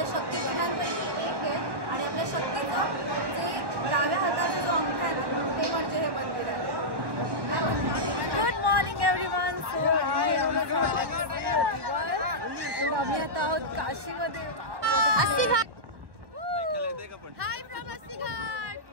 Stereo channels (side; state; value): left; late; 1.1 ms